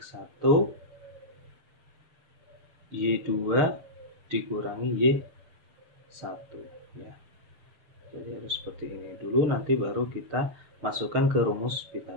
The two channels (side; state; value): left; late; 6.5 ms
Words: y2 dikurangi y1 ya. Jadi harus seperti ini dulu, nanti baru kita masukkan ke rumus